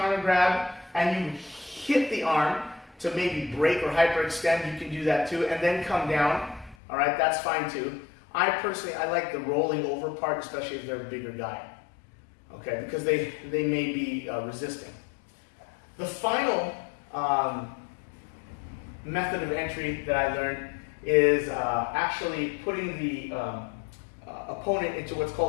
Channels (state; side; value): drops out; right; at 6.8 s